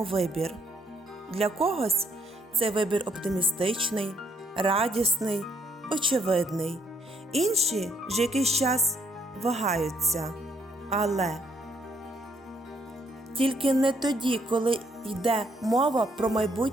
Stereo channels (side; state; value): both; normal; correlation 0.69